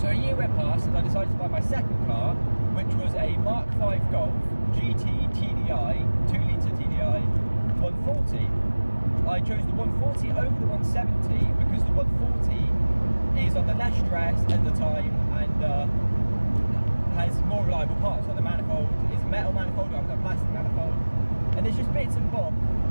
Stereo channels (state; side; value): inverted; both; correlation -1.00